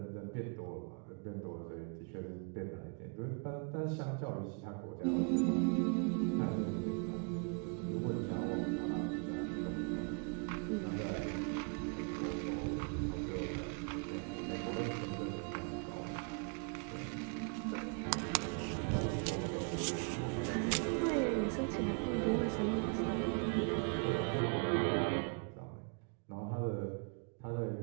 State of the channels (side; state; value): left; quieter; 38.4 dB